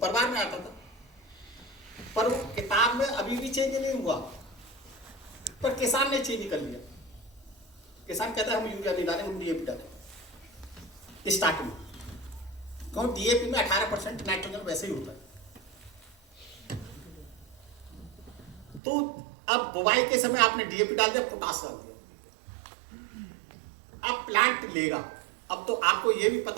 में आता था। पर वो किताब में अभी भी चेंज नहीं हुआ, पर किसान ने चेंज कर लिया। किसान कहता है हम यूरिया नहीं डालें, हम डीएपी डालें स्टार्टिंग में। क्यों, डीएपी में 18% नाइट्रोजन वैसे ही होता है। तो अब बुवाई के समय आपने डीएपी डाल दिया, पोटाश डाल दिया, अब प्लांट लेगा। अब तो आपको यह भी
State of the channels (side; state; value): left; drops out; at 18.8 s